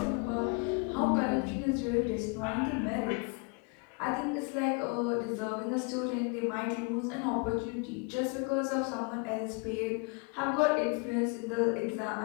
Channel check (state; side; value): quieter; right; 32.9 dB